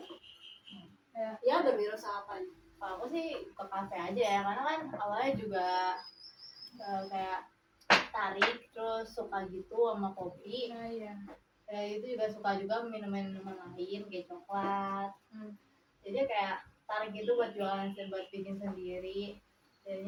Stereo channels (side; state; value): both; identical; correlation 1.00